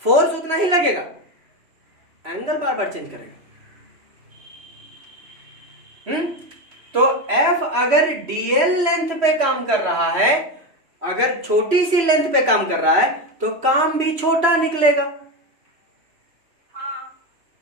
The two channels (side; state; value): left; late; 3.0 ms